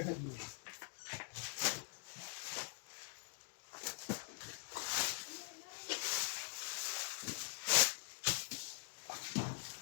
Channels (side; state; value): right; silent; digital silence